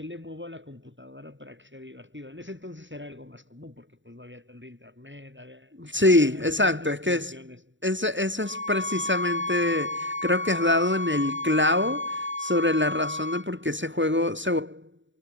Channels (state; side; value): late; left; 0.54 ms